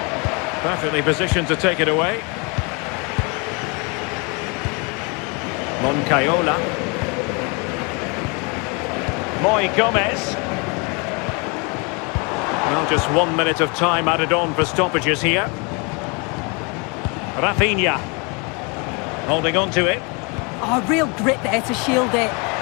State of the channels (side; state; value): right; quieter; 31.6 dB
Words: Perfectly positioned to take it away. Moncayola. Moy Gomez. Well, just 1 minute of time added on for stoppages here. Rafinha. Holding on to it. Oh, real grit there to shield it.